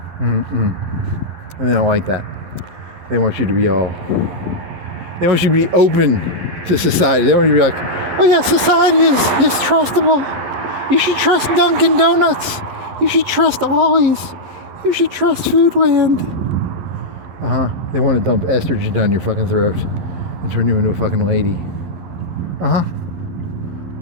And they don't like that. They want you to be they want you to be open to society. They want you to be like, oh yeah, society is trustable. You should trust Dunkin' Donuts. You should trust Ollie's. You should trust Foodland. They want to dump estrogen down your fucking throat and turn you into a fucking lady.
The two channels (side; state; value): left; late; 11 ms